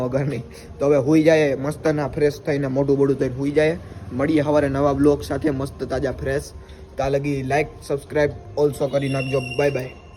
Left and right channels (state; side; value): identical; both; correlation 1.00